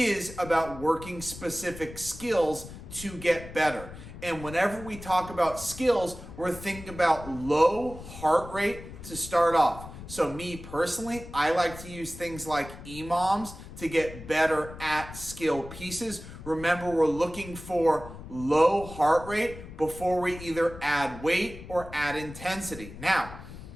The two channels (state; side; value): noise; left; rumble, 14 dB below the sound